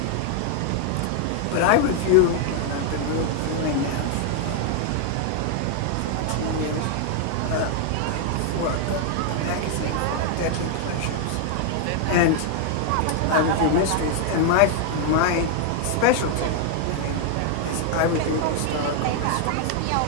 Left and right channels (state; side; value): different; both; correlation 0.00